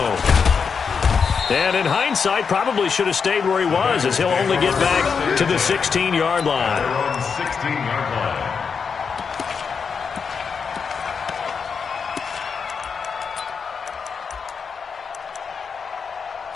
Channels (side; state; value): right; quieter; 5.9 dB